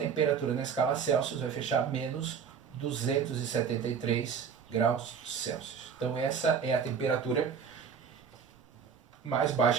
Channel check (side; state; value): left; quieter; 6.7 dB